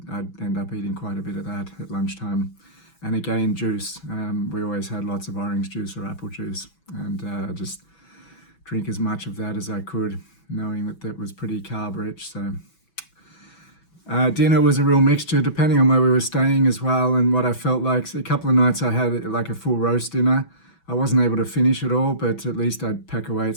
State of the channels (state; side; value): late; right; 6.0 ms